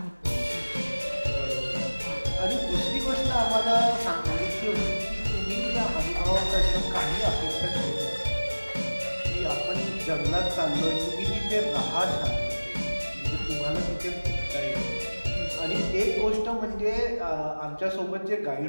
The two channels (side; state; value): both; inverted; correlation -1.00